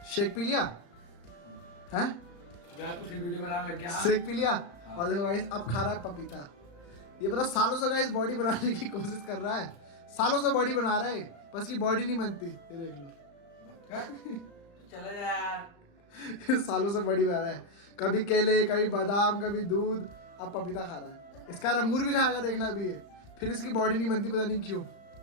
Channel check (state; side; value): late; right; 35 ms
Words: शेक पी लिया हैं? तो फिर वीडियो बनाने लग गया। शेक पी लिया। और देखो गाइस अब खा रहा है पपीता। ये पता सालों से गाइस बॉडी बनाने की कोशिश कर रहा है। सालों से बॉडी बना रहा है, बस की बॉडी नहीं बनती। ये देख लो। चले जा यार। सालों से बॉडी बना रहा है। कभी केले, कभी बादाम, कभी दूध, अब पपीता खा रहा है। इसका अंगूर भी खाएगा देखना अभी ये, फिर इसकी बॉडी नहीं बनती, पता नहीं क्यों।